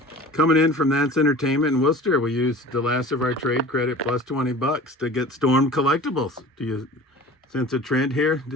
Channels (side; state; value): both; normal; correlation 0.41